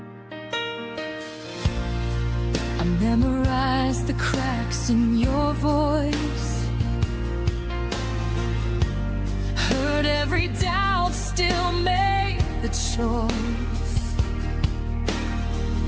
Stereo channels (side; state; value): both; identical; correlation 1.00